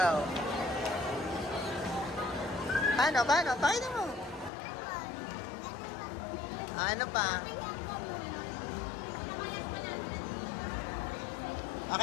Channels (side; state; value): right; drops out; at 4.5 s